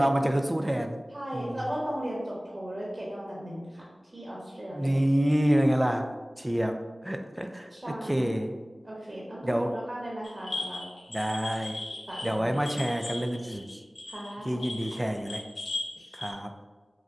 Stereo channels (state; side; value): normal; both; correlation 0.98